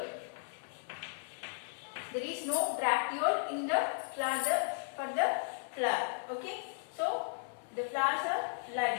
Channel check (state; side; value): silent; right; 54 dB below the other